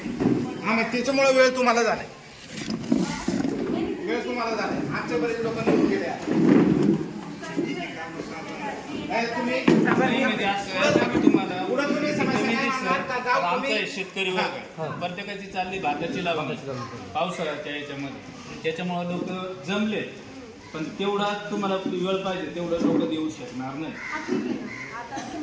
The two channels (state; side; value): identical; both; correlation 1.00